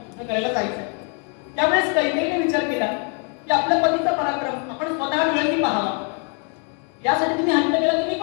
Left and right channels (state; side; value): quieter; right; 37.0 dB